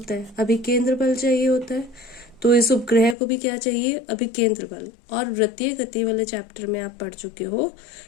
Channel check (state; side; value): drops out; right; at 3.2 s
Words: है, अभिकेंद्र बल चाहिए होता है। तो इस उपग्रह को भी क्या चाहिए, अभिकेंद्र बल। और वृत्तीय गति वाले चैप्टर में आप पढ़ चुके हो